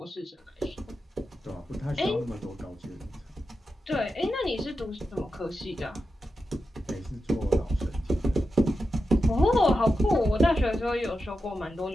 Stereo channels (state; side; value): normal; both; correlation 0.90